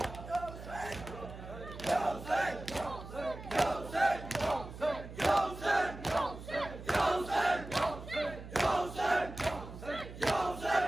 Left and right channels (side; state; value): right; noise; hum, 12 dB below the sound